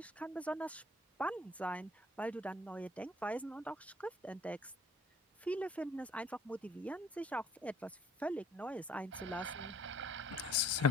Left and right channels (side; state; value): both; normal; correlation 0.56